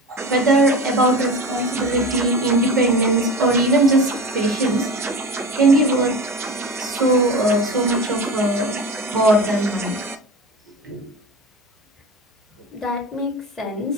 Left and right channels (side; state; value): both; normal; correlation 0.30